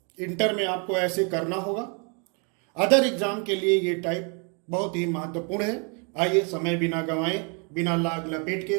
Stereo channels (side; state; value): left; quieter; 36.4 dB